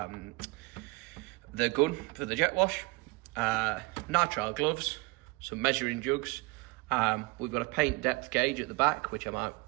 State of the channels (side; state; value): left; quieter; 25.0 dB